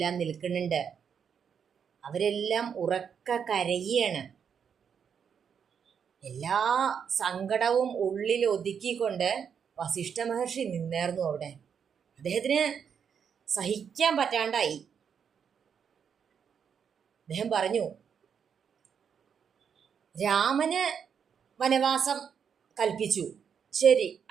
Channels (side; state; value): left; quieter; 7.3 dB